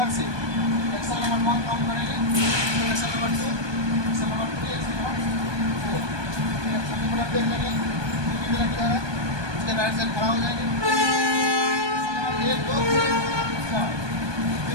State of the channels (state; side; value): late; left; 1.2 ms